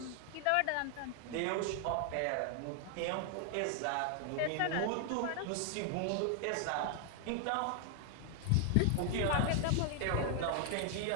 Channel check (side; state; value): both; different; correlation 0.00